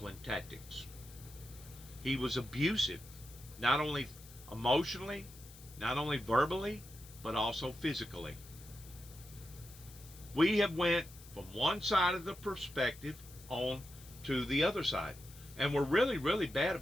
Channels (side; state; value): left; noise; hiss, 19 dB below the sound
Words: tactics. He was abusive, not only emotionally, not only verbally, but also physically. We have went from one side of the perspective on to the other side. And we're really, really bad